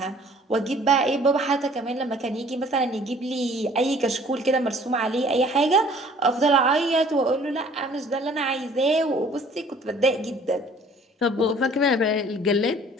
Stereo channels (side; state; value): both; normal; correlation 0.54